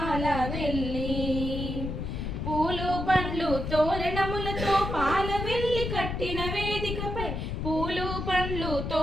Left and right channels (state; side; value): noise; left; rumble, 4 dB below the sound